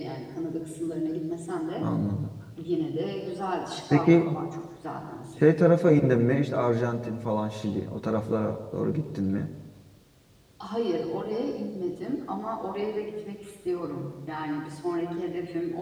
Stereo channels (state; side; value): identical; both; correlation 1.00